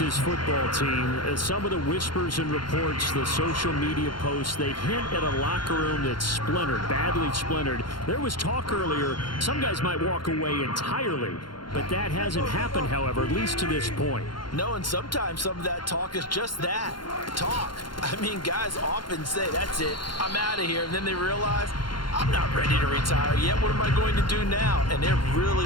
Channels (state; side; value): late; right; 0.72 ms